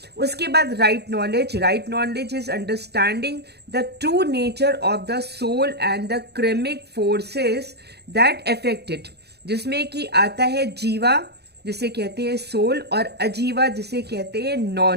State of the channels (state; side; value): late; left; 0.48 ms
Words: उसके बाद right knowledge. Right knowledge is understanding the true nature of the soul and the karmic forces that affect it, जिसमें कि आता है जीवा जिसे कहते हैं सोल, और अजीवा जिसे कहते हैं